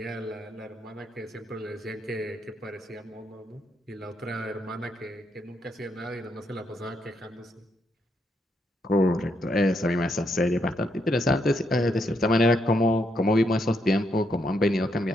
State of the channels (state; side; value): normal; both; correlation 0.78